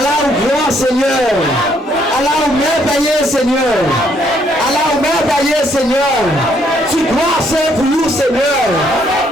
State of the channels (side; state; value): both; normal; correlation 0.69